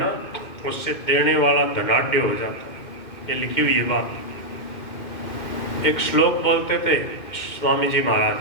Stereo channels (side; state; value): right; late; 2.5 ms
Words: उससे देने वाला धनाढ्य हो जाता है। ये लिखी हुई है बात। एक श्लोक बोलते थे स्वामी जी महाराज,